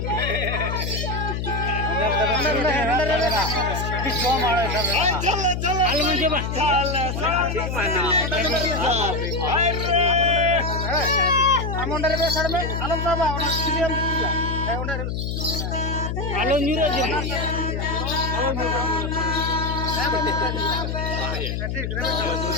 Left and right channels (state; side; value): noise; left; hum, 2 dB below the sound